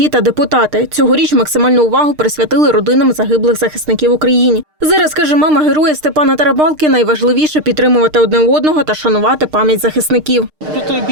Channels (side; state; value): left; late; 6.6 ms